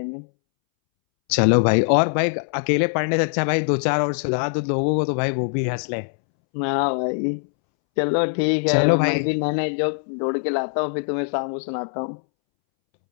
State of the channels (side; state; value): right; silent; 64 dB below the other